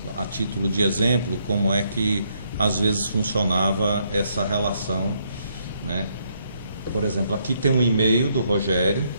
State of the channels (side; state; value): both; inverted; correlation -0.74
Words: a título de exemplo, como é que às vezes funcionava essa relação, né? Por exemplo, aqui tem um e-mail do Rogério